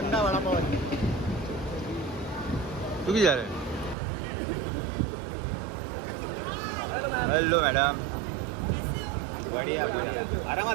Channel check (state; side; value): drops out; left; at 4.0 s